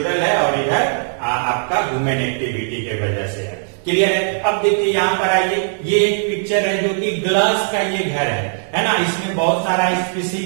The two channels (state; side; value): silent; left; 67 dB below the other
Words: है और इधर आपका ह्यूमन एक्टिविटी के वजह से है। क्लियर है। अब देखिए यहाँ पर आइए, ये एक पिक्चर है जो कि ग्लास का ये घर है ना। इसमें बहुत सारा